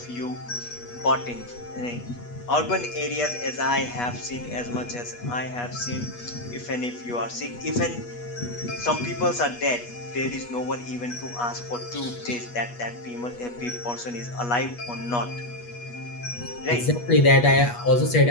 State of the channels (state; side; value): late; right; 8.3 ms